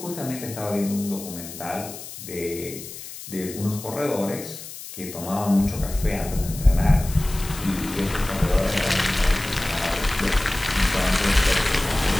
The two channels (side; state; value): left; noise; hiss, 12 dB below the sound